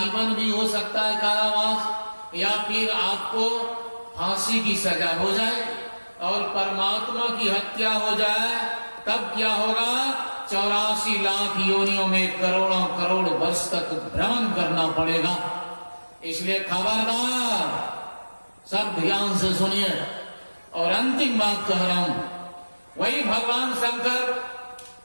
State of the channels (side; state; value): both; inverted; correlation -1.00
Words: भी हो सकता है कारावास, या फिर आपको फांसी की सजा हो जाए। और परमात्मा की हत्या हो जाए तब क्या होगा? 84 लाख योनियों में करोड़ों करोड़ वर्ष तक भ्रमण करना पड़ेगा। इसलिए खबरदार, सब ध्यान से सुनिए। और अंतिम बात कह रहा हूं, वही भगवान शंकर